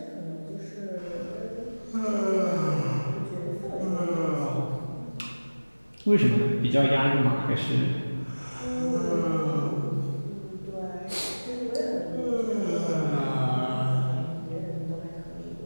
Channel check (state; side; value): inverted; both; correlation -1.00